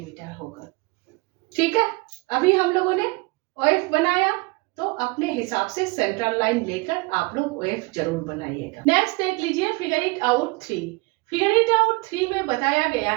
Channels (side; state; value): left; quieter; 25.9 dB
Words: होगा। ठीक है, अभी हम लोगों ने OF बनाया तो अपने हिसाब से सेंट्रल लाइन लेकर आप लोग OF जरूर बनाइएगा। नेक्स्ट देख लीजिए figure it out 3। Figure it out 3 में बताया गया